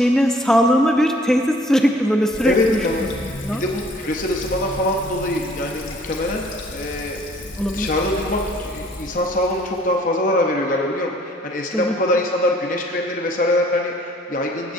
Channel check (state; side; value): normal; both; correlation 0.57